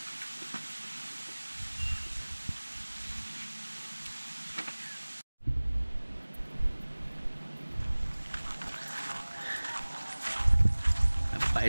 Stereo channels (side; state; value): both; inverted; correlation -1.00